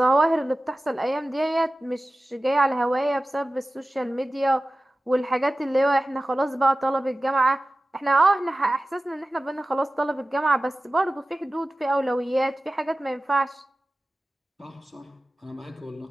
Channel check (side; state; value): both; normal; correlation 0.96